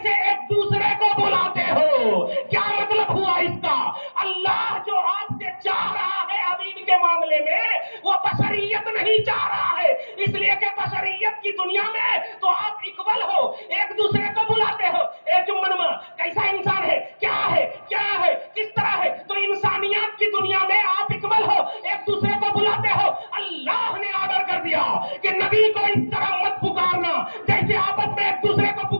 ایک دوسرے کو بلاتے ہو۔ کیا مطلب ہوا اس کا؟ اللہ جو آپ سے چاہ رہا ہے حبیب کے معاملے میں، وہ بشریت نہیں چاہ رہا ہے، اس لیے کہ بشریت کی دنیا میں تو آپ اکول ہو، ایک دوسرے کو بلاتے ہو۔ اے جمنما کیسا انسان ہے، کیا ہے، کیا ہے، کس طرح ہے؟ تو انسانیت کی دنیا میں آپ اکول ہو، ایک دوسرے کو بلاتے ہو۔ اللہ نے آرڈر کر دیا کہ نبی کو اس طرح مت پکارنا جیسے آپس میں ایک دوسرے کو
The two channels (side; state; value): both; inverted; correlation -1.00